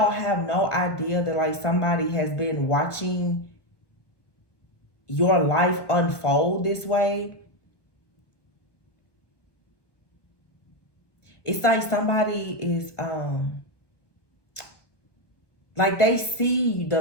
have no idea that like somebody has been watching your life unfold this way. It's like somebody is like they see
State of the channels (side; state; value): right; late; 1.2 ms